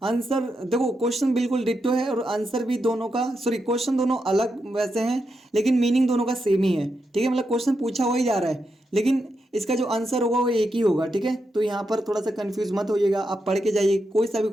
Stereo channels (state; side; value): normal; both; correlation 0.85